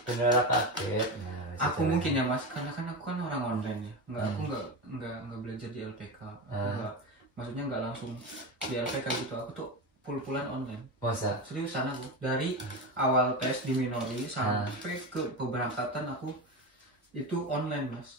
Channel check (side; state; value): both; normal; correlation 0.20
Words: benar kaget. Aku mungkin ya mas, karena kan aku kan orang online ya. Aku nggak belajar di LPK. Maksudnya nggak langsung di LPK gitu. Aku tuh pul-pulan online. Masa? Seriusan aku dari awal tes di Minori sampai ke pemberangkatan aku itu online mas.